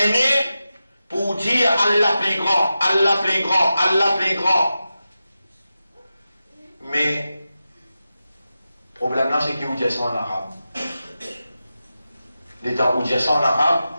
pour dire Allah plus grand, Allah plus grand, Allah plus grand. Mais, le problème là, c'est qu'il vous dit ça en arabe. L'état où dit ça en arabe,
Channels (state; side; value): inverted; both; correlation -0.92